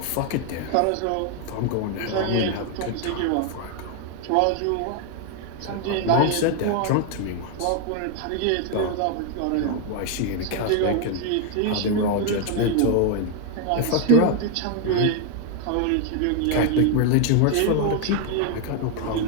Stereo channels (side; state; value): both; different; correlation 0.01